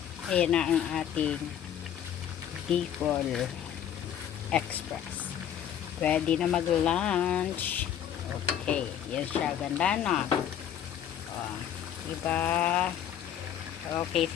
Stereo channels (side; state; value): right; quieter; 9.7 dB